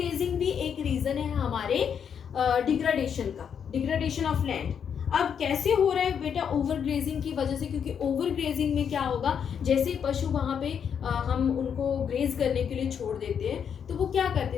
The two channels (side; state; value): right; quieter; 7.7 dB